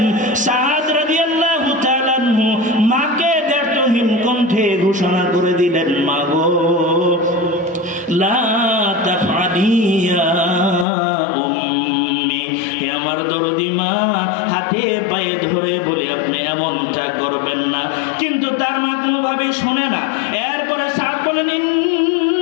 সাদ রাদিয়াল্লাহু তাআলা আনহু মাকে দ্ব্যর্থহীন কণ্ঠে ঘোষণা করে দিলেন, মা গো লা তাফআলি ইয়া উম্মি, হে আমার দরদি মা, হাতে পায়ে ধরে বলে আপনি এমনটা করবেন না। কিন্তু তার মা কোনোভাবেই শোনে না। এরপরে সাদ বলেন,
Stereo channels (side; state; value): right; drops out; at 10.9 s